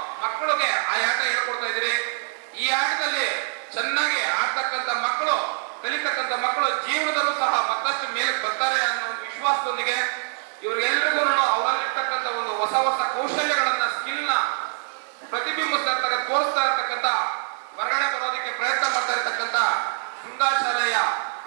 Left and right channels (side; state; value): left; silent; 62 dB below the other